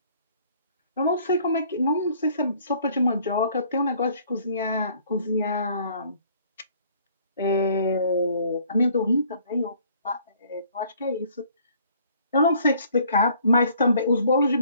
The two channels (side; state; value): both; inverted; correlation -0.59